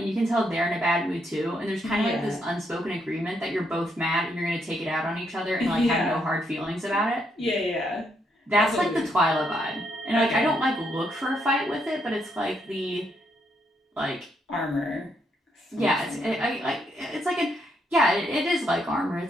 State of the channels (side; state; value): both; normal; correlation 0.76